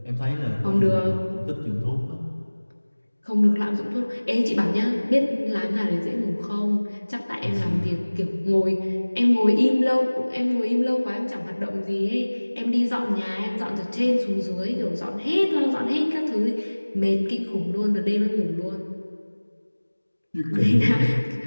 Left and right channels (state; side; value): inverted; both; correlation -1.00